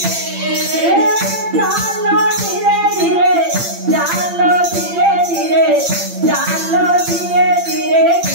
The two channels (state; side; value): late; left; 8.8 ms